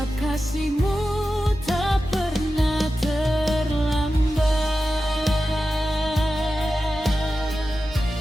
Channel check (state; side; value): normal; both; correlation 0.93